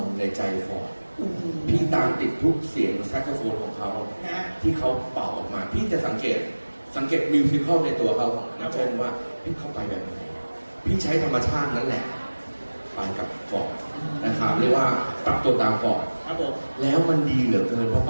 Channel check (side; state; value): both; inverted; correlation -1.00